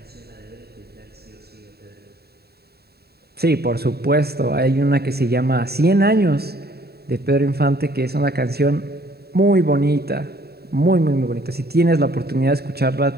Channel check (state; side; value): late; left; 0.46 ms